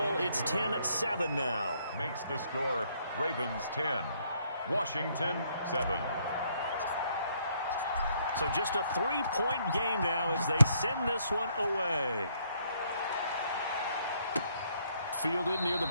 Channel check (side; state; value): both; inverted; correlation -0.69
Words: It's 10-7 now. Makes the score Ravens 10, Washington 7. So just a 3-point game now as they send this one away. Fielded near the